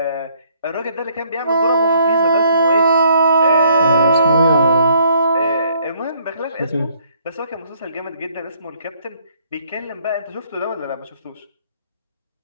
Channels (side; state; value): both; inverted; correlation -0.65